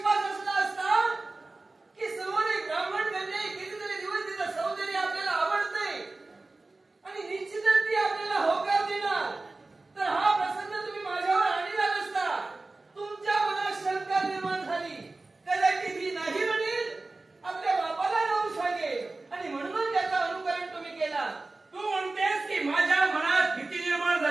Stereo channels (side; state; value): left; quieter; 3.3 dB